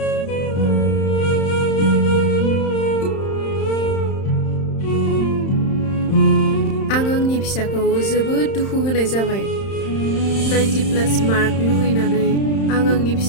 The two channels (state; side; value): late; right; 31 ms